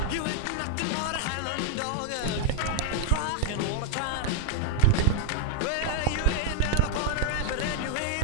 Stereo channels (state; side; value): different; both; correlation 0.00